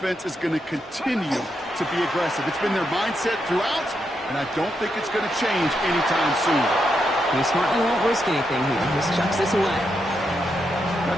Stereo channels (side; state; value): both; normal; correlation 0.82